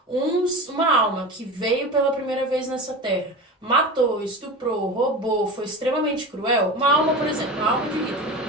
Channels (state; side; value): normal; both; correlation 0.28